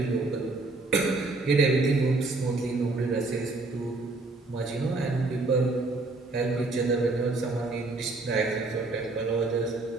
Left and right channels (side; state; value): left; quieter; 3.3 dB